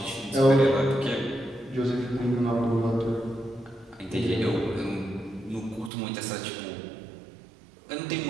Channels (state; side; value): drops out; left; at 5.9 s